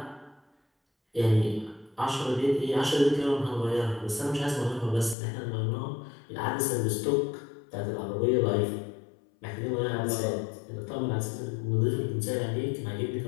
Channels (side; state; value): right; drops out; at 5.2 s